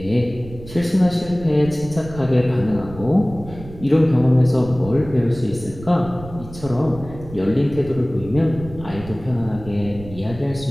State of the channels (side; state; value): right; noise; rumble, 15 dB below the sound